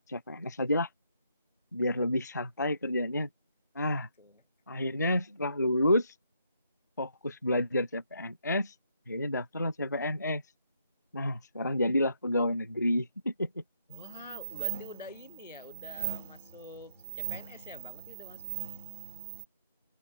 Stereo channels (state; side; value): inverted; both; correlation -0.72